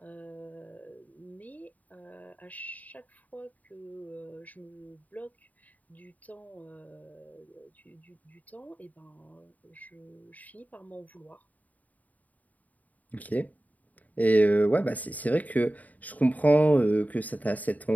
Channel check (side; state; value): right; late; 0.075 ms